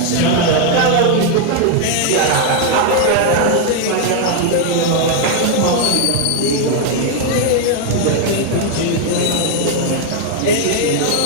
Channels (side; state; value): both; different; correlation 0.00